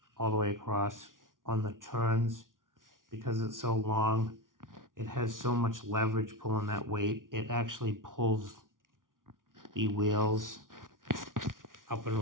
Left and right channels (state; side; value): late; left; 0.89 ms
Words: all the way across on the turns, because it's so long, it has so much leverage pulling that weight. It actually pulls the wheels up and